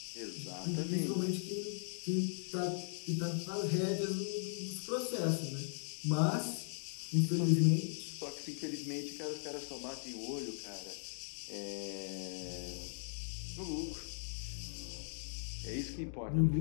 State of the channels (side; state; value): right; silent; digital silence